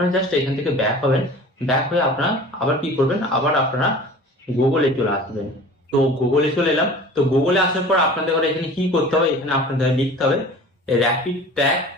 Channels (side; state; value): both; normal; correlation 0.42